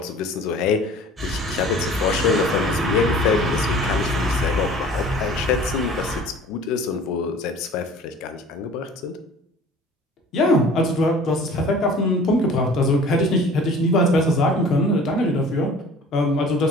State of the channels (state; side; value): normal; both; correlation 0.46